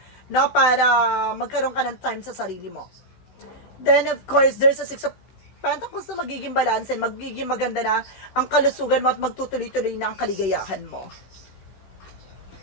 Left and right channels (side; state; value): right; late; 16 ms